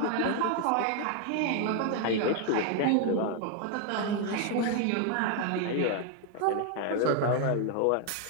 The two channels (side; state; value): both; different; correlation 0.00